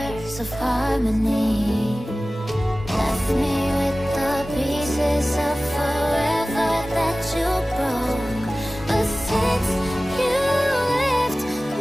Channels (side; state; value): both; normal; correlation 0.97